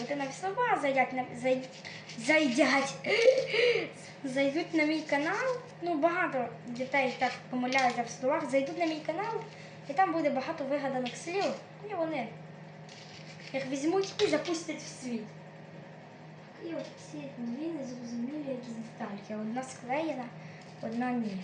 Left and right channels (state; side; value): identical; both; correlation 1.00